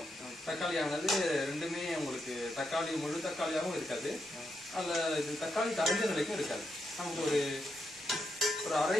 தக்காளியானது ரெண்டுமே உங்களுக்கு முழு தக்காளியாகவும் இருக்காது, அதுல இது தக்காளி கரைஞ்ச நிலைக்கும் இருக்காது. நமக்கு ஒரு அரை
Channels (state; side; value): normal; both; correlation 0.82